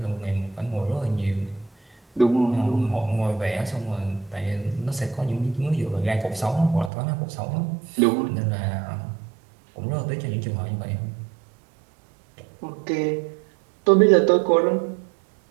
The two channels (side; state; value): left; drops out; at 6.9 s